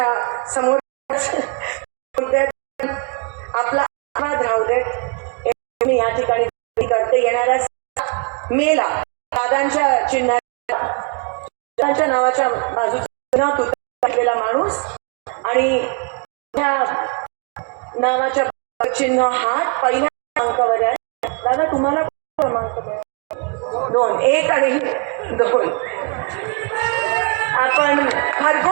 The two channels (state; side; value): quieter; left; 34.2 dB